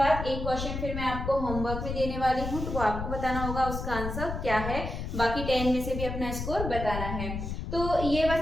एक क्वेश्चन फिर मैं आपको होमवर्क में देने वाली हूँ, तो वो आपको बताना होगा उसका आंसर क्या है, बाकी 10 में से भी अपना स्कोर बताना है। तो ये बस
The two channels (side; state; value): left; noise; rumble, 5 dB below the sound